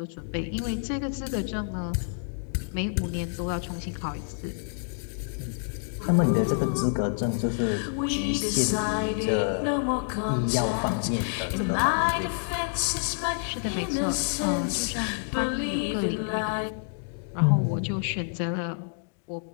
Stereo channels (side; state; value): right; silent; digital silence